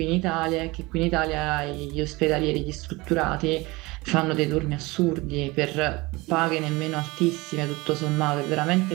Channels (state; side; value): quieter; left; 22.9 dB